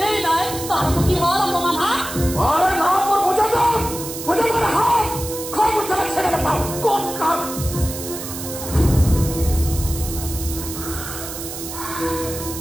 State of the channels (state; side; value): noise; right; hiss, 9 dB below the sound